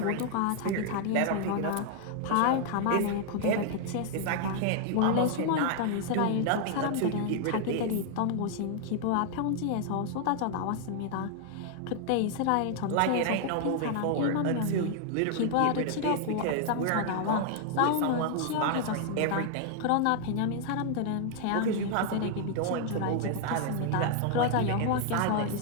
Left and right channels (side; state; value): both; different; correlation 0.00